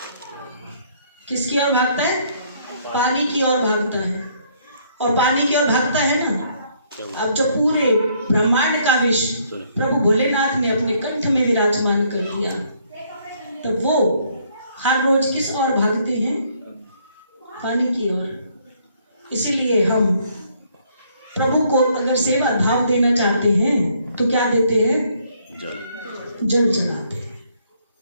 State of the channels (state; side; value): inverted; both; correlation -0.67